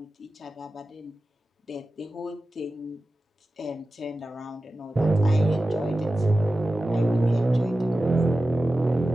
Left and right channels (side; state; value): both; normal; correlation 0.94